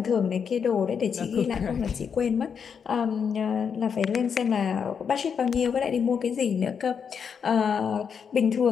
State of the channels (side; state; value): right; quieter; 6.8 dB